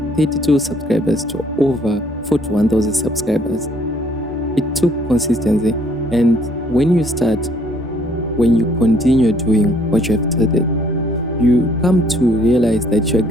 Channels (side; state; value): both; normal; correlation 0.63